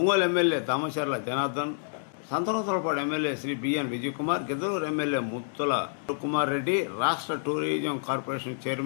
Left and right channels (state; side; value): silent; right; digital silence